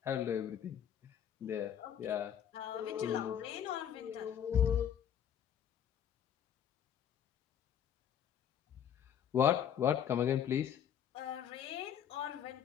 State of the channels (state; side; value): quieter; right; 9.1 dB